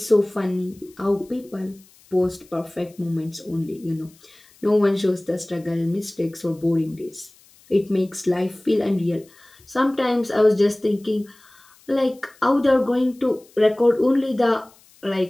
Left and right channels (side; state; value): left; noise; hiss, 28 dB below the sound